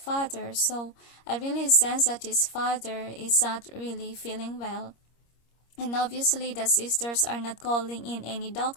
father. So I really sense that his father is not really feeling well. And obviously the sisters are not calling in any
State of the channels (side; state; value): right; late; 26 ms